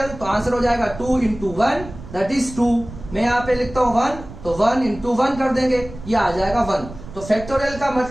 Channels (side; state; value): right; noise; rumble, 14 dB below the sound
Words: तो आंसर हो जाएगा 2 इंटू 1 दैट इज 2। मैं यहाँ पे लिखता हूँ 1, तो 1 इंटू 1 कर देंगे, ये आ जाएगा 1। तो फैक्टोरियल का